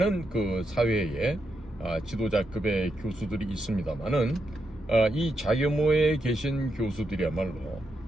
그 사회에 지도자급의 교수들이 있습니다만은 이 자교모에 계신 교수들이야말로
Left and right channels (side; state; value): both; normal; correlation 0.83